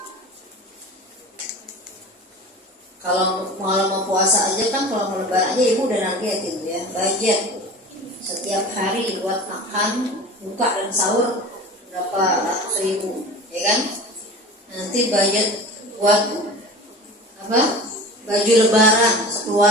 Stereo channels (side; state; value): both; normal; correlation 0.36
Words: Kalau mau puasa aja kan, kalau mau lebaran aja ibu udah nargetin ya, budget setiap hari buat makan, buka dan sahur berapa ratus ribu ya kan. Nanti budget buat apa, baju lebaran